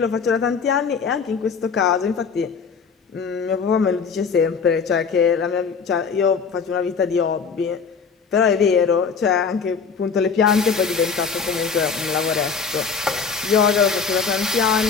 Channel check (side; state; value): right; quieter; 5.7 dB